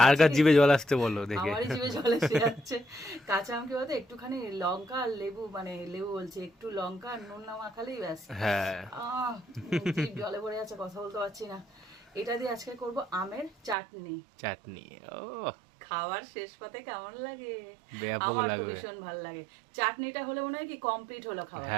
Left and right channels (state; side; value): drops out; left; at 13.8 s